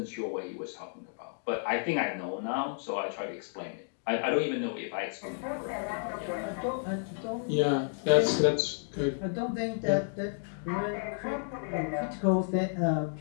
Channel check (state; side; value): silent; right; digital silence